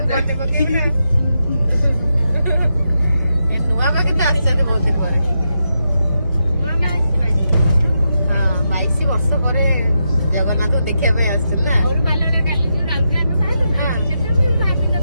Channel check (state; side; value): inverted; both; correlation -0.85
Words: पके ए नुआ बाके तो आछन बहुत दिन पर हां 22 वर्ष पर जगन्नाथ देखिया पे आछन ना और बालने काली जो राउरकेला में पाइलु ना सेते भी भाबी